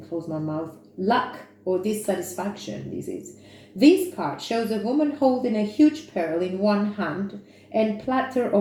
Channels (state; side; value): identical; both; correlation 1.00